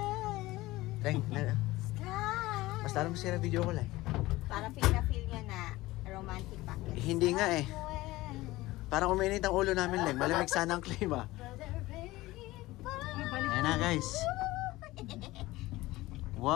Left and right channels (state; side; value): quieter; right; 18.6 dB